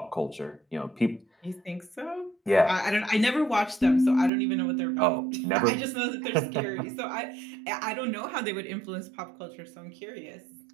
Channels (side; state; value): left; drops out; at 4.3 s